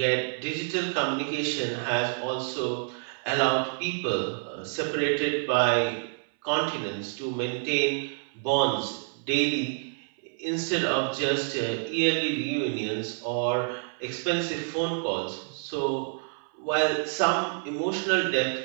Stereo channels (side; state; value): left; silent; 59 dB below the other